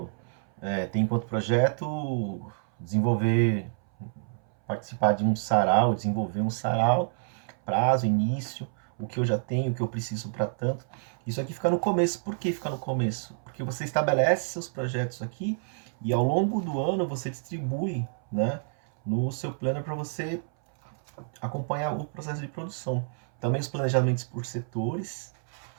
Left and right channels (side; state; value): left; silent; 59 dB below the other